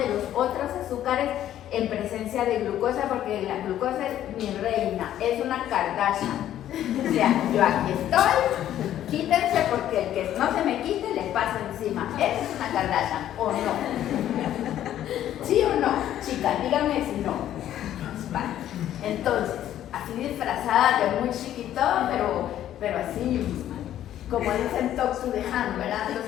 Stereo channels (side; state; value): right; quieter; 11.8 dB